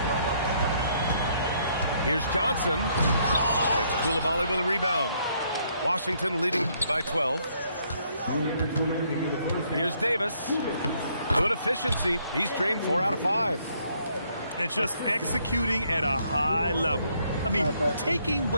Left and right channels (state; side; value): inverted; both; correlation -0.69